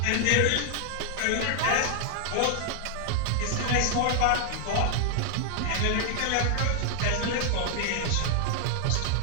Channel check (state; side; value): different; both; correlation 0.00